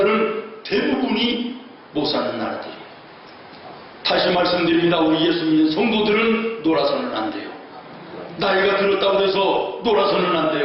대부분이 못 사는 나라들이에요. 다시 말씀드립니다. 우리 예수 믿는 성도들은 놀아서는 안 돼요. 나이가 들었다고 해서 놀아서는 안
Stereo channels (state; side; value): identical; both; correlation 1.00